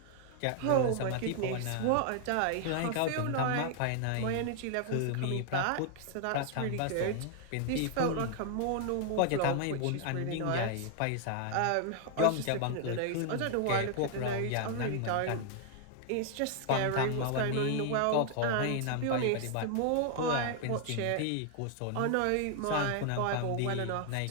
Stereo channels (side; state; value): both; different; correlation 0.00